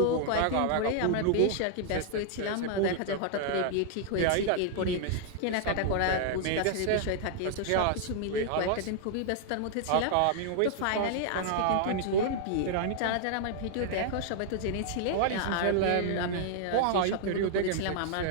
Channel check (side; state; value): both; different; correlation -0.01